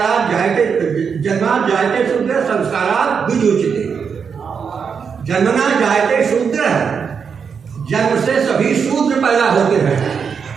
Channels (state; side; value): quieter; left; 6.3 dB